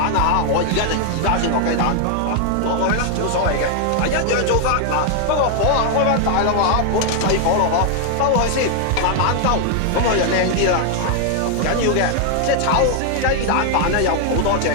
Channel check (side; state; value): both; different; correlation 0.00